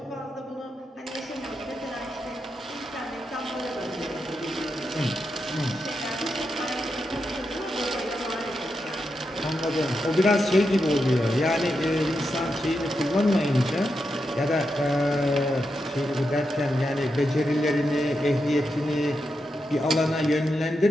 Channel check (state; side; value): normal; both; correlation 0.86